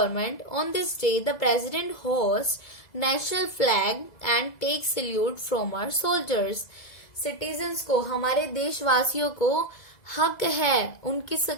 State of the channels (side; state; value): right; late; 2.0 ms